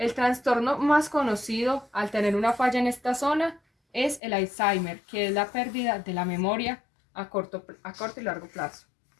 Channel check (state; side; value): drops out; right; at 4.2 s